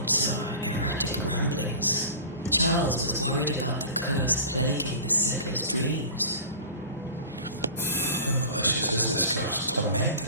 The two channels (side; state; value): both; inverted; correlation -0.38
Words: are erratic ramblings. Charles was worried about the curse plaguing the settlers' dreams. How malicious is this curse,